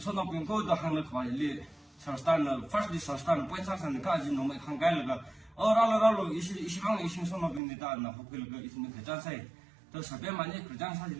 pin ko da han le kwa le Sarastan first di Sarastan point Sarastan ka ji no mai khang kai la 라로 이시방 이신 손업입니다. 나 호텔 그 있는 그 장사에 또 설배만이 그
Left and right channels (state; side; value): drops out; left; at 7.6 s